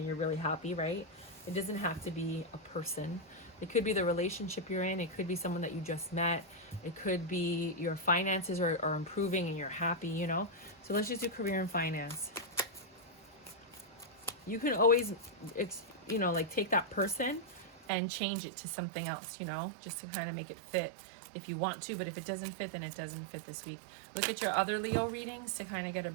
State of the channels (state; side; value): drops out; left; at 17.9 s